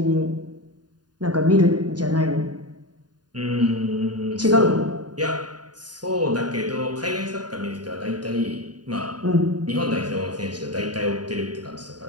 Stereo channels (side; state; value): left; late; 0.70 ms